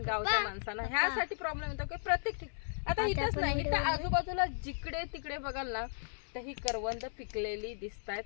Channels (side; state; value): right; silent; 54 dB below the other